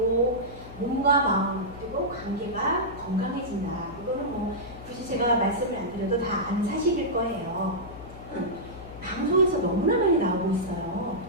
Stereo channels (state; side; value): noise; left; hum, 15 dB below the sound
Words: 몸과 마음 그리고 관계가 건강해진다. 이거는 굳이 제가 말씀을 안 드려도 다 아는 사실일 거예요. 방송에서 너무나 많이 나오고 있어요.